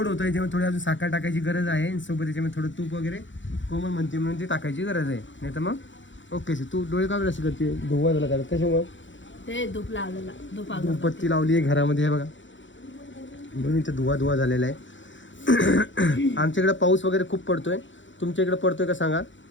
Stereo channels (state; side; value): late; right; 0.55 ms